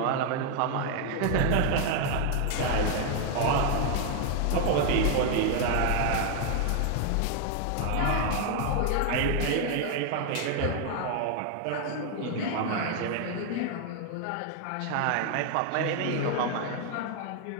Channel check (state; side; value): different; both; correlation 0.00